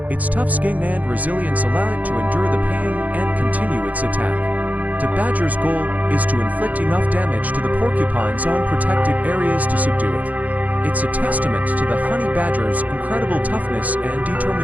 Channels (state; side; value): late; left; 0.076 ms